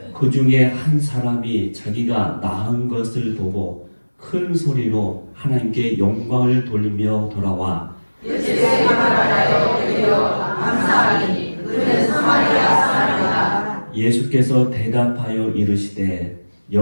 그 중에 한 사람이 자기가 나은 것을 보고 큰 소리로 하나님께 영광을 돌리며 돌아와 예수의 말하여 드리어 감사하니 그는 사마리아 사람이다. 예수께서 대답하여 이르시되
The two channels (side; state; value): both; inverted; correlation -1.00